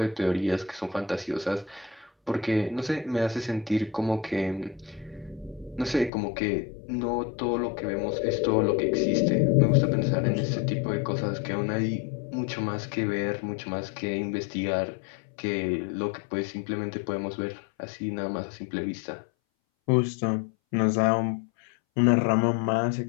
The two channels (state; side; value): drops out; right; at 6.1 s